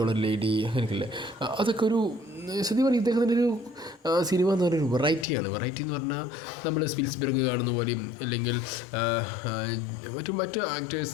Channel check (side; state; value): right; drops out; at 5.2 s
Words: ലേഡി, അങ്ങനെയൊക്കെയല്ലേ, അതൊക്കെ ഒരു സത്യം പറഞ്ഞാൽ ഇദ്ദേഹത്തിൻ്റെ ഒരു സിനിമ എന്ന് പറയുന്നത് വെറൈറ്റിയാണ്. വെറൈറ്റി എന്ന് പറഞ്ഞാൽ നമ്മൾ സ്പിൽസ്ബർഗ് കാണുന്ന പോലെയും അല്ലെങ്കിൽ മറ്റ്